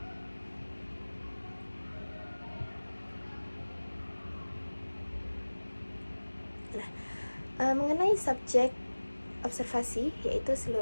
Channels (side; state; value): both; inverted; correlation -1.00